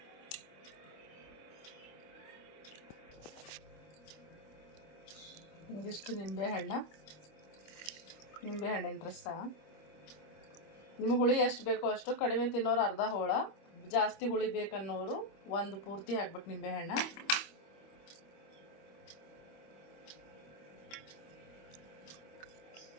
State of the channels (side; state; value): right; late; 25 ms